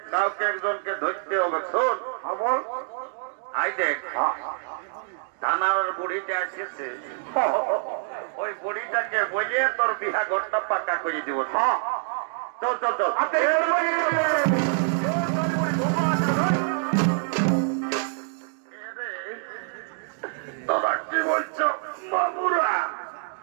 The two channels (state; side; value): silent; left; 59 dB below the other